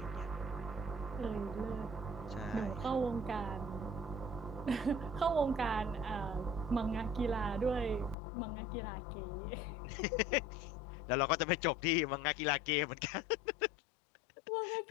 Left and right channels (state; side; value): drops out; right; at 8.2 s